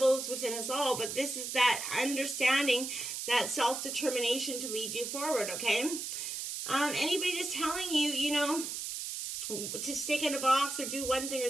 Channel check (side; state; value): right; noise; hiss, 5 dB below the sound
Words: is within us all, but this is that understanding, that self-determination to lead you forward, okay? Anybody that's telling you, to stick in a box or do one thing or